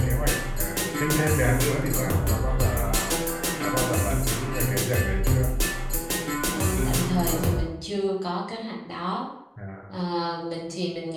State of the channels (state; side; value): identical; both; correlation 1.00